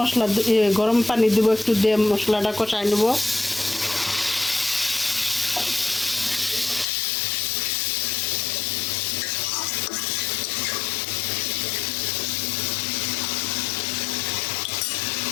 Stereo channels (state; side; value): drops out; right; at 6.9 s